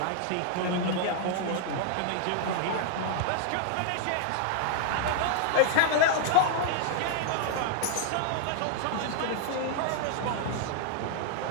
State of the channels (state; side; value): different; both; correlation 0.00